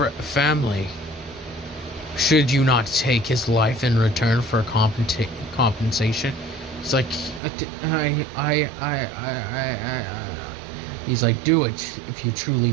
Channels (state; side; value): drops out; left; at 7.4 s